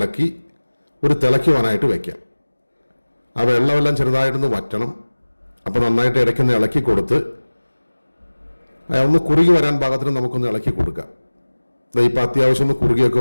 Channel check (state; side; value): inverted; both; correlation -1.00